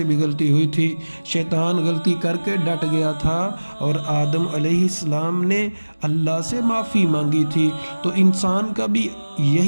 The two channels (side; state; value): both; inverted; correlation -1.00